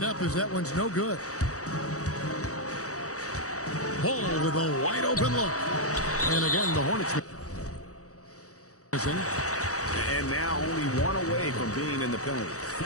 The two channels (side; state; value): right; late; 0.65 ms